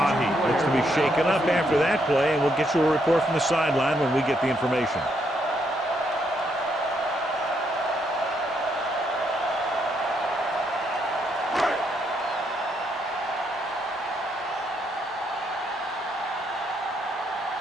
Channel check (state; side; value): normal; both; correlation 0.75